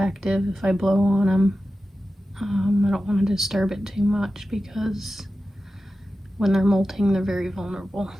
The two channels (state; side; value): normal; both; correlation 0.93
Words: if I blow on him. I don't want to disturb it too much because when they're molting, they're very vulnerable,